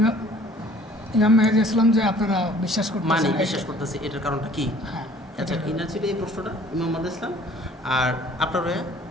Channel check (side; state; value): both; normal; correlation 0.53